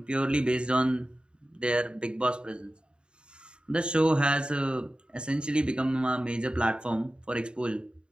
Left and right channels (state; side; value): late; left; 0.052 ms